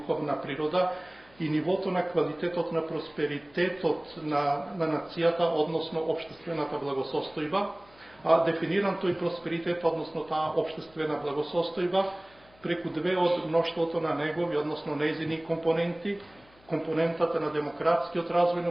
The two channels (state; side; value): noise; left; hum, 29 dB below the sound